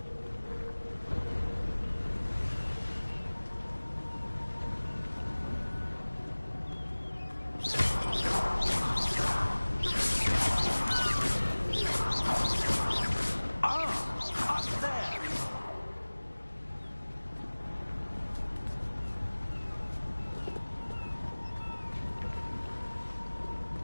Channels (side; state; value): both; inverted; correlation -1.00